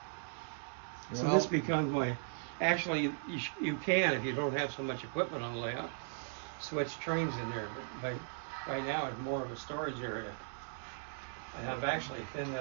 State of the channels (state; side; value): silent; left; digital silence